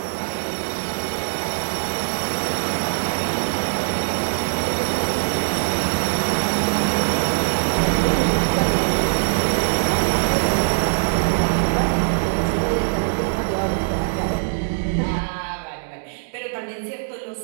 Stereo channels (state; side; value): silent; left; digital silence